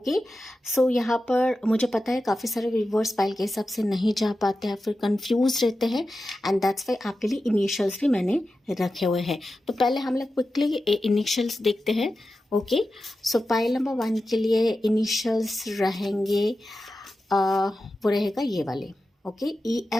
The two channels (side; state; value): both; normal; correlation 0.92